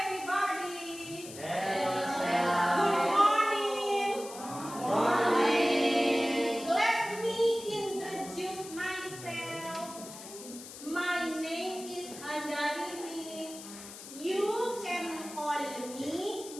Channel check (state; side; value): noise; left; hiss, 14 dB below the sound